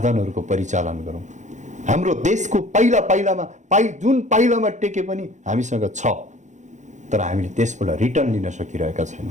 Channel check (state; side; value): late; left; 0.35 ms